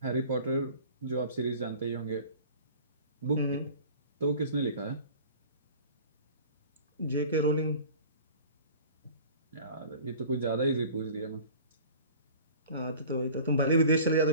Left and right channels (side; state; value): both; inverted; correlation -0.44